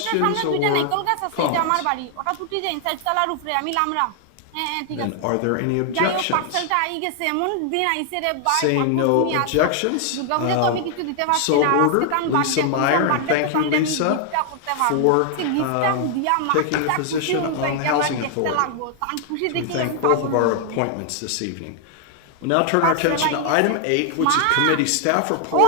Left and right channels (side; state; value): both; different; correlation 0.00